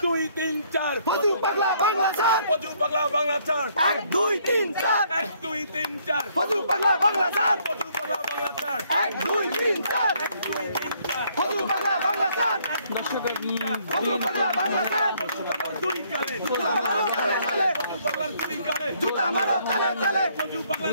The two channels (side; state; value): both; inverted; correlation -0.67